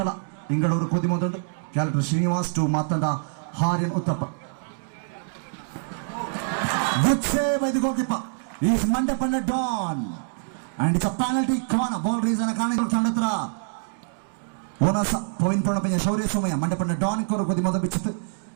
ಇಂಗಳೂರು ಖುದಿ ಮೊದಲು ಕ್ಯಾಲೆಕ್ಟರ್ ಶ್ರೀನಿವಾಸ್ ಟು ಮಾತಂಡ ಹಾರಿನ್ ಉತ್ತಪ್ಪ ಗುಡ್ ಸೇವ್ ಇದು ಗೋಕಿಪ್ಪ is Mandyapanda Don and it's a penalty corner ball reason ಕಾರಣ ತಂಡತ್ರ ಓನಸ ಪವಿನ್ ಪಣಪಂಜ ಶೌರ್ಯ ಸೋಮಯ್ಯ ಮಂಡಪಣ್ಣ ಡಾನ್ ಕೊರ ಕೊದಿ ಮೊದ ಬಿಚ್ಚಿತ್ತು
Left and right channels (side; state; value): left; silent; digital silence